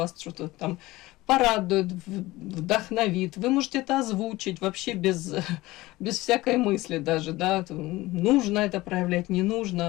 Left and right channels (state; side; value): quieter; right; 19.0 dB